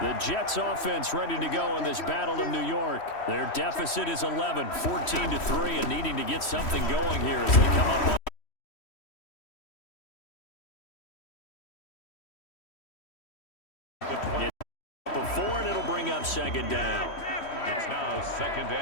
The Jets offense ready to go in this Battle of New York. Their deficit is 11, 14-3, and needing to get something going here as they come up on before, and it'll bring up 2nd down. It's now 2nd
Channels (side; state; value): right; late; 3.1 ms